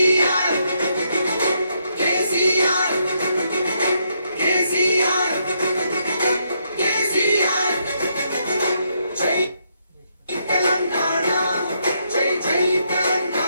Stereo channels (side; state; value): both; inverted; correlation -0.76